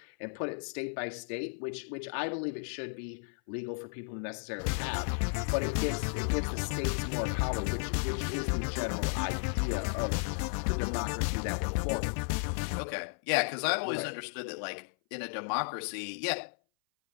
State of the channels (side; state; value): right; silent; 55 dB below the other